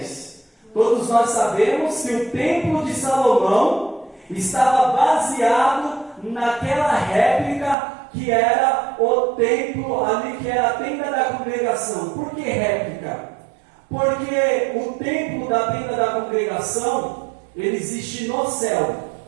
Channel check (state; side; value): drops out; left; at 7.8 s